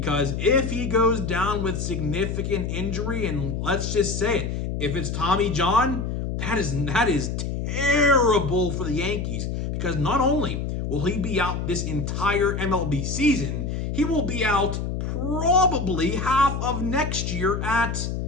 if he goes down with significant injury, and let's just say it, if it's Tommy John, that is terrible for the Yankees. Because not only will he be out this entire MLB season, he will be out probably half of next year at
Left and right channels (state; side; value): noise; left; hum, 3 dB below the sound